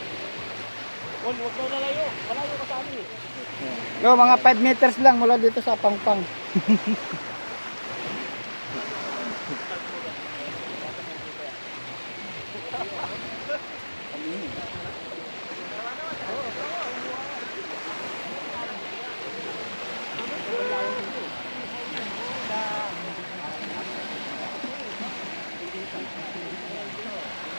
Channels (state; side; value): inverted; both; correlation -1.00